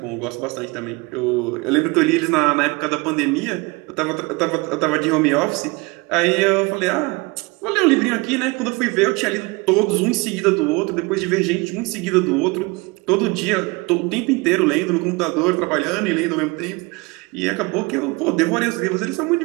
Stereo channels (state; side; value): quieter; left; 25.9 dB